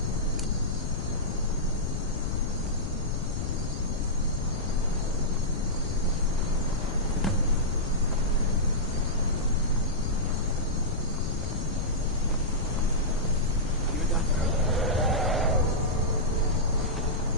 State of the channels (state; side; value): noise; left; rumble, 3 dB below the sound